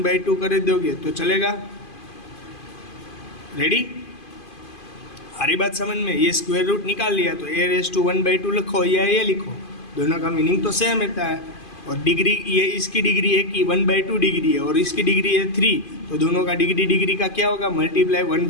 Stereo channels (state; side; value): late; right; 2.5 ms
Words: कर दोगे तो चलेगा। रेडी, सारी बात समझ में, ये स्क्वायर रूट निकाल लिया तो a⁻1/2 लिखो या ये लिखो, दोनों का मीनिंग तो सेम रहता है। और डिग्री, ये इसकी डिग्री है कि 1/2 डिग्री है और इसकी डिग्री है 3, तो दोनों का डिग्री का क्या होगा, मल्टीप्लाई